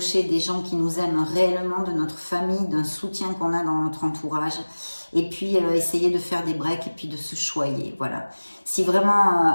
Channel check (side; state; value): both; inverted; correlation -1.00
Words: des gens qui nous aiment réellement, de notre famille, d'un soutien qu'on a dans notre entourage. Et puis, essayer de faire des breaks et puis de se choyer. Voilà. Si